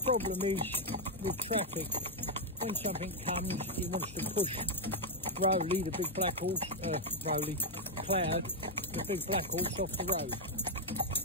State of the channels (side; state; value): both; normal; correlation 0.00